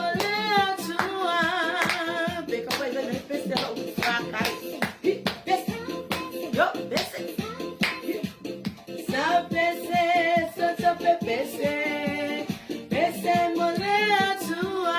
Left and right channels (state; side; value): identical; both; correlation 1.00